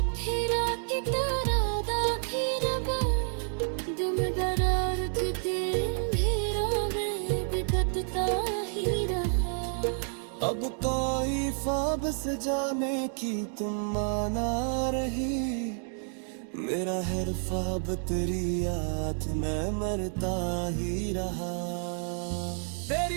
फिरा की तरह दाखी रब, दुम दरार अब कोई ख्वाब से जाने की तुम माना रही, मेरा हर ख्वाब तेरी याद में मरता ही रहा।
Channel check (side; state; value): left; silent; 58 dB below the other